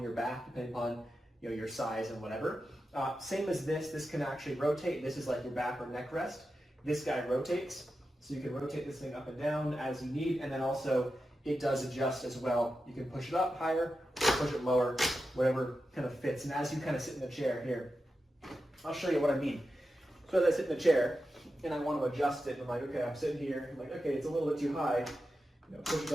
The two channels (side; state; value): both; normal; correlation 0.90